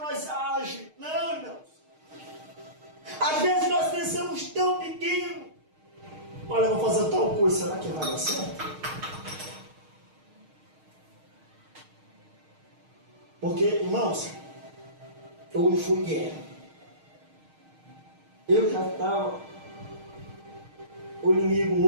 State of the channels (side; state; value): left; late; 6.4 ms